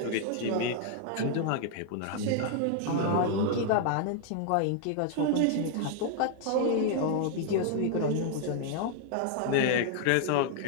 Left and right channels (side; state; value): both; different; correlation 0.00